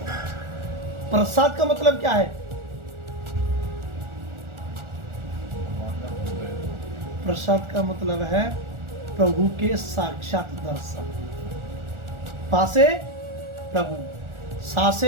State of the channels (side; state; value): left; late; 1.4 ms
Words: प्रसाद का मतलब क्या है? प्रसाद का मतलब है प्रभु के साक्षात दर्शन। पासे प्रभु,